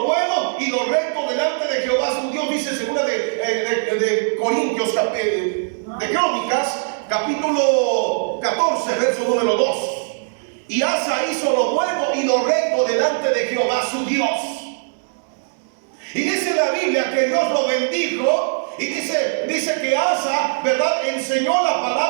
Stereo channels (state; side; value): silent; left; digital silence